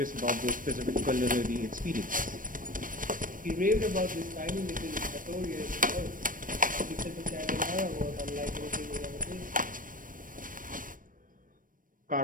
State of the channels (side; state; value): left; late; 0.40 ms